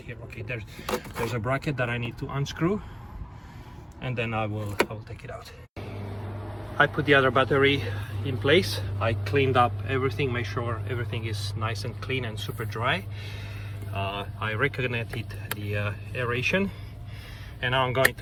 here. Okay, there's a bracket that I need to unscrew, and then I will take it out. I put the other battery in place. I cleaned up everything, make sure everything is nice and clean and super dry. I reconnected the aeration, and now I'm going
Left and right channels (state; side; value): identical; both; correlation 1.00